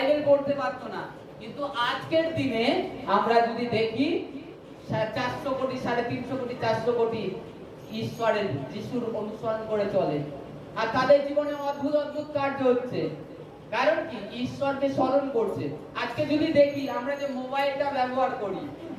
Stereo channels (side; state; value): both; identical; correlation 1.00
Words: পড়তে পারতো না। কিন্তু আজকের দিনে আমরা যদি দেখি 400 কোটি, 350 কোটি, 400 কোটি ঈশ্বরের যিশুর অনুসরণ করে চলে, আর তাদের জীবনে অদ্ভুত অদ্ভুত কার্য হচ্ছে। কারণ কি? ঈশ্বরকে স্মরণ করছে। আজকে যদি দেখি আমরা যে মোবাইলটা ব্যবহার করি,